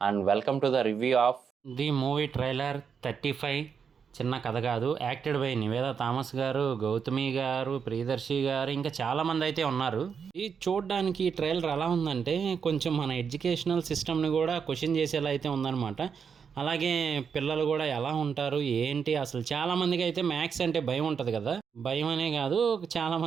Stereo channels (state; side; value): quieter; left; 6.6 dB